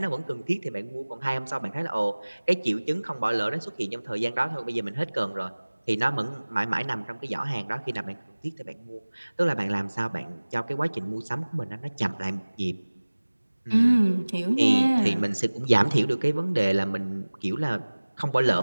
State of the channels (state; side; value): inverted; both; correlation -1.00